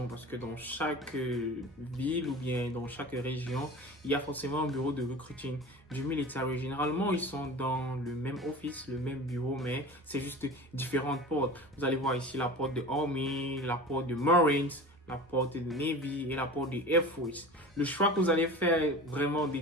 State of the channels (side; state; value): both; normal; correlation 0.35